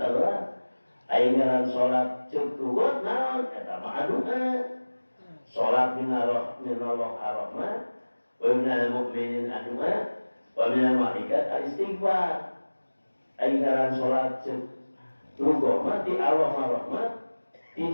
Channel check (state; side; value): inverted; both; correlation -1.00